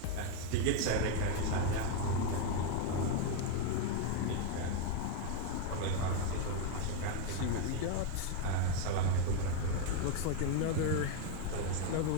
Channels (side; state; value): both; different; correlation 0.01